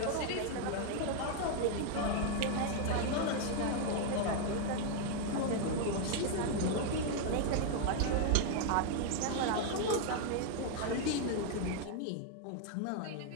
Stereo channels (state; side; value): different; both; correlation 0.00